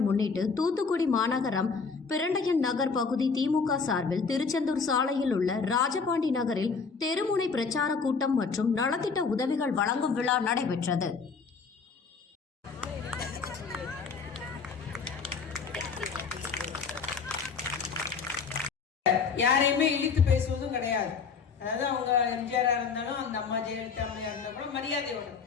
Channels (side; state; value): right; quieter; 5.2 dB